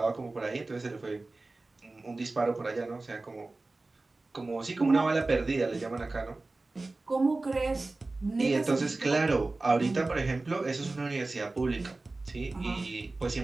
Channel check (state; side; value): quieter; left; 3.2 dB